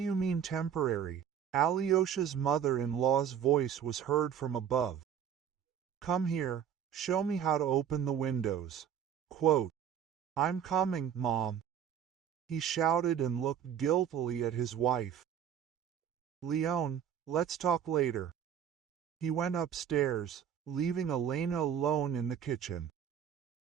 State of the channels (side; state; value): left; quieter; 8.8 dB